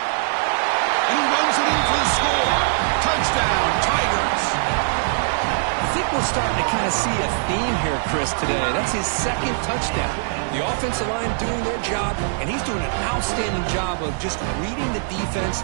he runs it in for the score. Touchdown, Tigers. I think we're starting to kind of see a theme here, Chris, today. That's his second touchdown. The offensive line doing their job, and he's doing an outstanding job of just reading the defense,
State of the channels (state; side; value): silent; left; digital silence